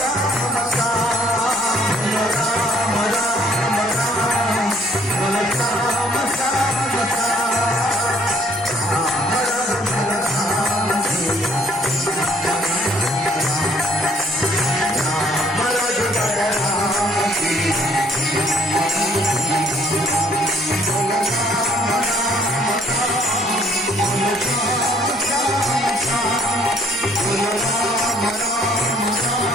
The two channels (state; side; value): normal; both; correlation 0.62